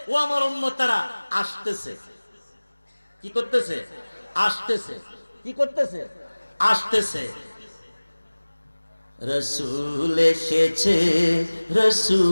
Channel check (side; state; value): both; inverted; correlation -1.00